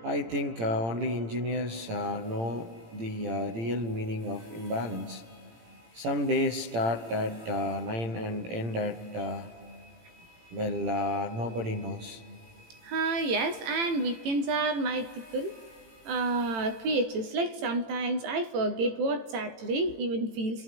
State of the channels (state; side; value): late; left; 18 ms